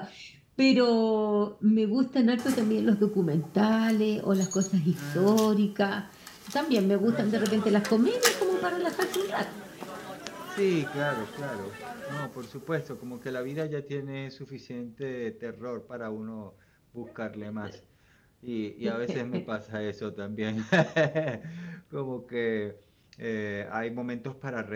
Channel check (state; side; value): identical; both; correlation 1.00